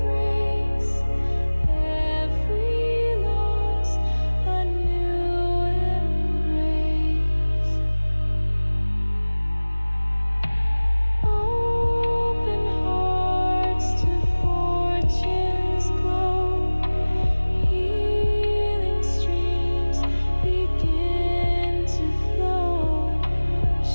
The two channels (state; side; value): inverted; both; correlation -1.00